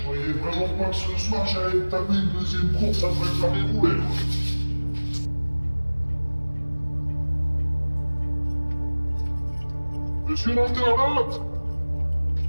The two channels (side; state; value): both; inverted; correlation -1.00